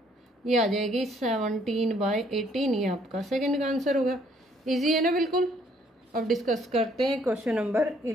ये आ जाएगी 17/18। ये आपका सेकंड का आंसर होगा। इजी है ना बिल्कुल। अब डिस्कस करते हैं question number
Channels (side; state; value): both; normal; correlation 0.65